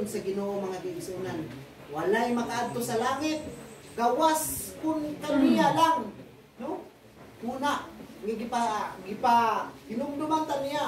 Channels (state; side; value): identical; both; correlation 1.00